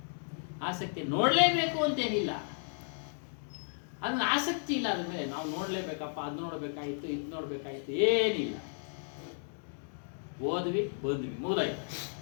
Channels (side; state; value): right; silent; digital silence